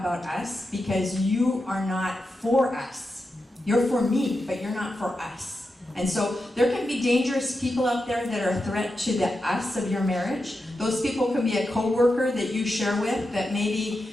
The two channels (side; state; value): both; normal; correlation 0.89